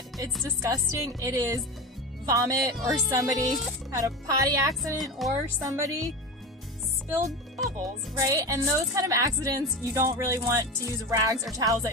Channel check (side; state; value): both; normal; correlation 0.24